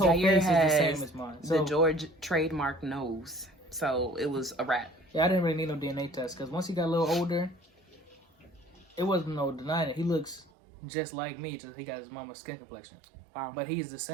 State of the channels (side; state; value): left; drops out; at 10.5 s